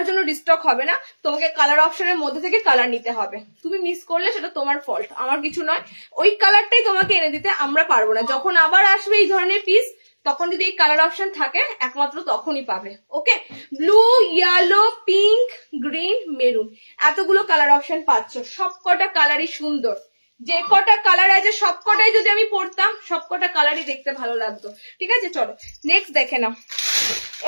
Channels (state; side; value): inverted; both; correlation -1.00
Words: জন্য রিস্টক হবে না, তোমাকে কালার অপশনের মধ্যে থেকে কালার নিতে হবে। তুমি মিস করলে সেটা তোমার ফল্ট, আমার কিছু নয়। ওই কালারটাই তোমাকে এনে দিতে আমরা পারবো না। যখন আবার আসবে এই ধরনের পিস, তখন যদি এই কালার অপশন থাকে একমাত্র তখনই পাবে। Okay, blue, yellow, pink, green, maroon, এতগুলো কালার অপশন পাচ্ছ। সবকটা কালারই সুন্দর, যে কটা কালার আছে সবকটাই যদি আমি পড়তাম সবকটা কালারই দেখতে ভালো লাগতো, ঠিক আছে। চলো নেক্সট দেখে নাও,